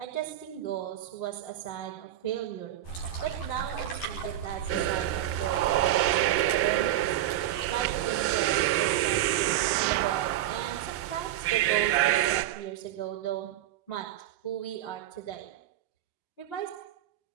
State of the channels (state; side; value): quieter; left; 13.0 dB